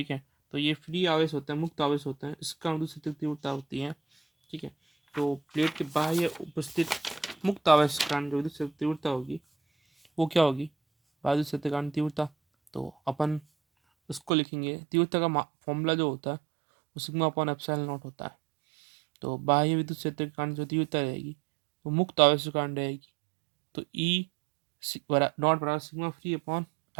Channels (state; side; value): drops out; left; at 14.3 s